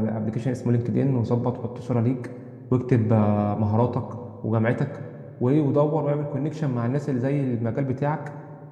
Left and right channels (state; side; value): identical; both; correlation 1.00